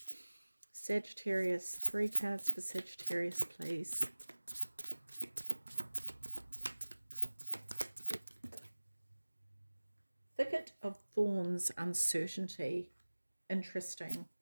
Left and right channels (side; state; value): both; inverted; correlation -1.00